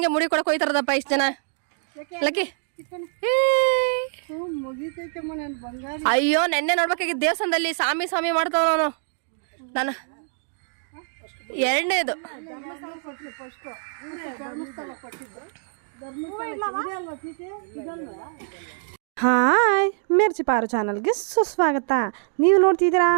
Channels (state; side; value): silent; left; digital silence